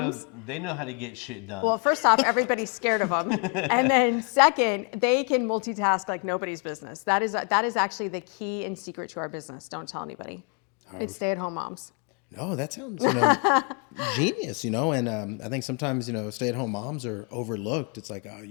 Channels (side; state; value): right; quieter; 36.0 dB